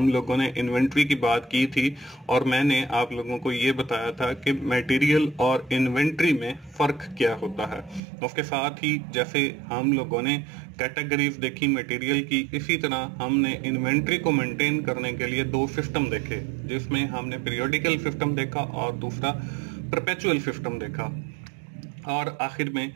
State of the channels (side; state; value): left; drops out; at 8.0 s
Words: लोगों ने इन्वेंट्री की बात की थी और मैंने आप लोगों को ये बताया था कि मटेरियल और इन्वेंट्री में फ़र्क क्या होता है। उसके साथ ही जैसे हम लोगों ने कैटेगरीज देखी मटेरियल की, इसी तरह हमने इन्वेंट्री को मेंटेन करने के लिए दो सिस्टम देखे, जिसमें हमने पीरियोडिकल सिस्टम देखा और दूसरा परपेचुअल सिस्टम देखा। और आखिर में